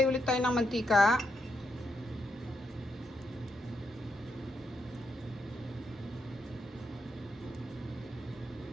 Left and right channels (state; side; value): normal; both; correlation 0.80